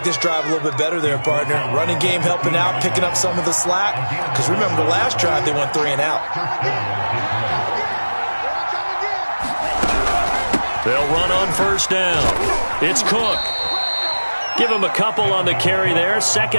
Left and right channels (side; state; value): both; inverted; correlation -1.00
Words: this drive a little bit better there, partner. Running game helping out, picking up some of the slack. Because remember, the last drive, they went 3 and out. They'll run on first down. It's Cook. Give him a couple on the carry there.